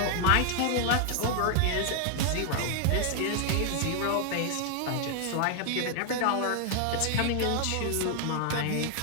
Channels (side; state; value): both; different; correlation 0.00